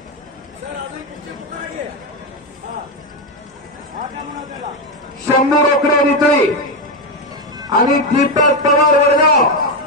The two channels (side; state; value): both; normal; correlation 0.09